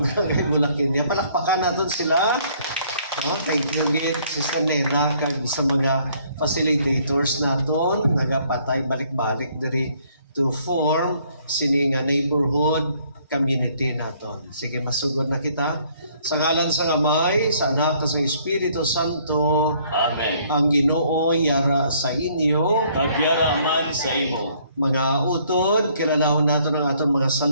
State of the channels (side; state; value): both; inverted; correlation -0.63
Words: Mulakinya. Palakpakan natin sila. No? Thank you gid Sister Nena kag sa mga facilitators naton nagapatay balik-balik diri to form sini nga neighborhood community naton. Sige, masugod na kita. Sa ngalan sa Amay, sa Anak, sa Espiritu Santo. Amen. Ang Ginoo yara sa inyo. Kagyara man sa imo. Mga utod, kilalahon nato ng aton mga